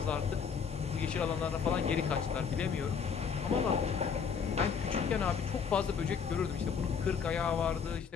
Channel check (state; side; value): quieter; right; 6.4 dB